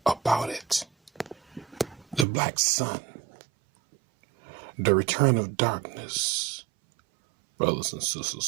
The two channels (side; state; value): left; drops out; at 2.2 s